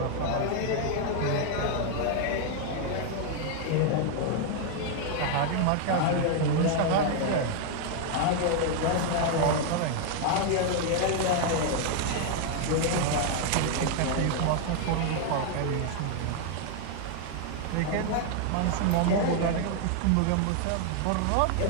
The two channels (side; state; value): both; different; correlation 0.00